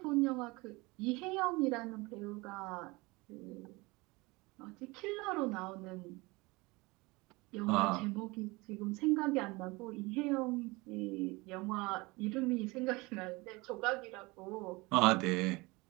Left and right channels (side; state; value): left; quieter; 23.9 dB